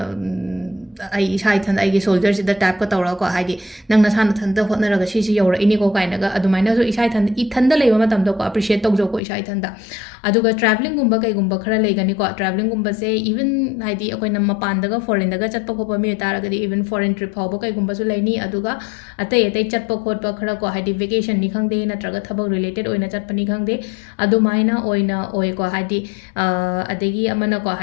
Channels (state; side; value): drops out; right; at 9.2 s